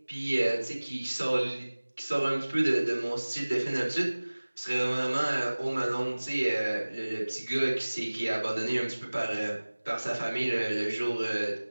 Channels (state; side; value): inverted; both; correlation -1.00